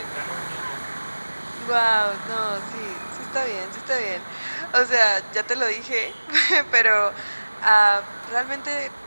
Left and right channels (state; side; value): inverted; both; correlation -1.00